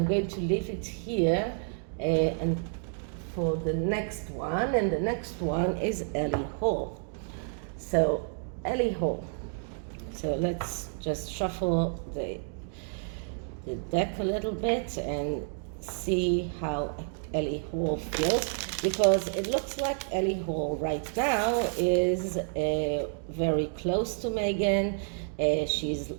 going to leave it here and for the next one, and the next one is Ellie Hall. So Ellie Hall. So let's just shuffle the deck a little bit and see how Ellie Hall feels, because it looks like Ellie Hall right now is very close to Meghan. She's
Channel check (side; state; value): left; silent; 58 dB below the other